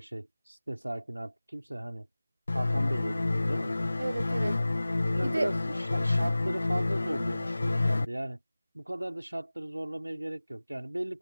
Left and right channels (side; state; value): both; inverted; correlation -0.98